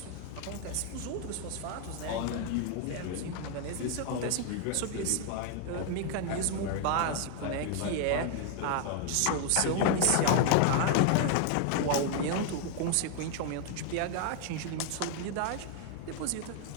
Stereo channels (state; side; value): different; both; correlation 0.00